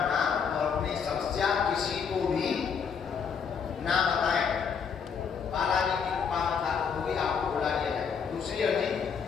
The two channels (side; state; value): right; quieter; 6.5 dB